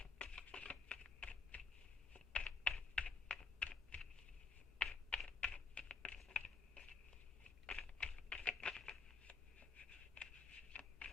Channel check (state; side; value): quieter; right; 4.8 dB